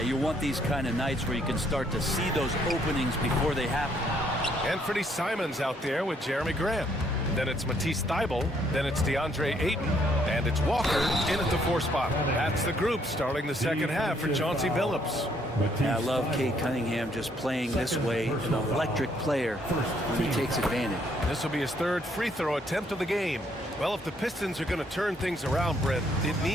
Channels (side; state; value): both; normal; correlation 0.68